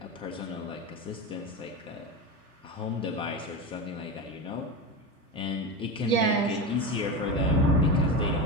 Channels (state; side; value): normal; both; correlation 0.21